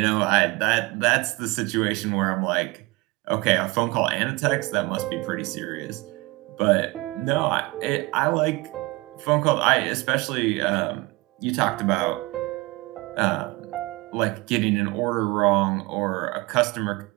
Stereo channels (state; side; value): quieter; left; 23.1 dB